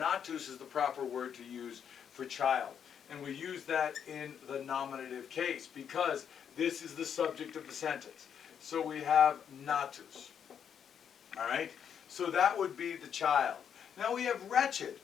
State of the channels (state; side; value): quieter; right; 8.1 dB